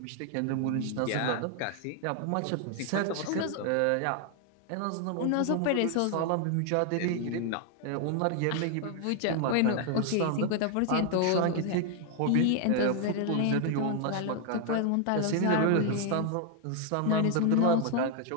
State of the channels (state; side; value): different; both; correlation 0.00